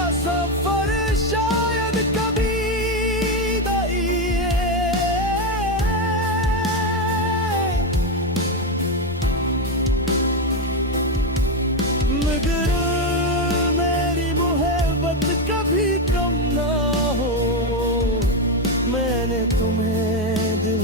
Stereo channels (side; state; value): both; normal; correlation 0.09